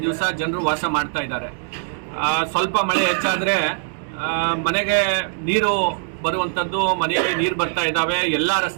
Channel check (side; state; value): left; silent; digital silence